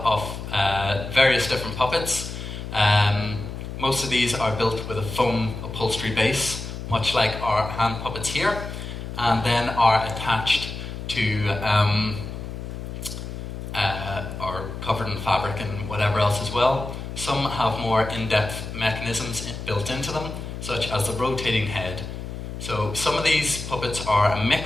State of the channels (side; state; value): left; noise; hum, 8 dB below the sound